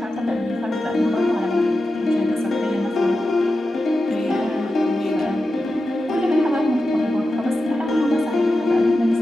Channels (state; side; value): normal; both; correlation 0.91